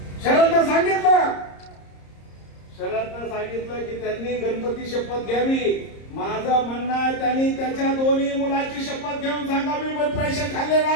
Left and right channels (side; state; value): right; late; 30 ms